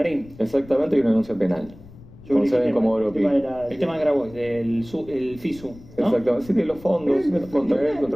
Exactamente, y una denuncia penal. Sobre Con sede el en tema- Comodoro el tema Pi. de la- El tema de Grabois, del el FISU, ¿no? Exactamente, sí, de los fondos, contra él,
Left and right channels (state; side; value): noise; left; rumble, 20 dB below the sound